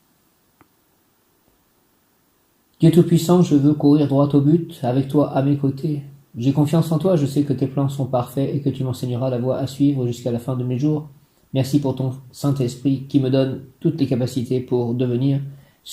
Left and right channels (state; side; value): identical; both; correlation 1.00